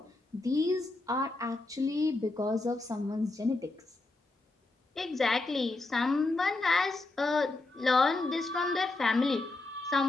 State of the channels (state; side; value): quieter; right; 3.1 dB